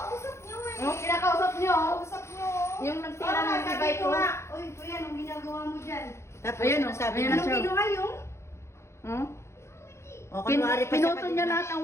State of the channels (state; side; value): late; right; 0.13 ms